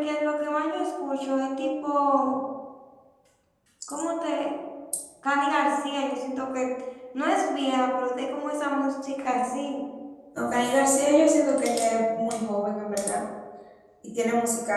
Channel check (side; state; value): both; identical; correlation 1.00